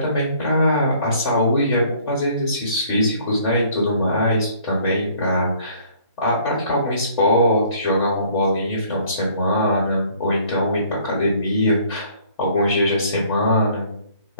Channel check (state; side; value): inverted; both; correlation -0.58